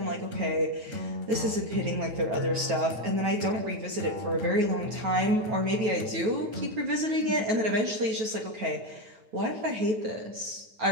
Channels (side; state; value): left; late; 9.2 ms